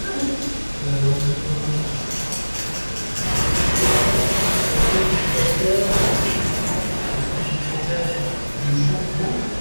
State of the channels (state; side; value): inverted; both; correlation -1.00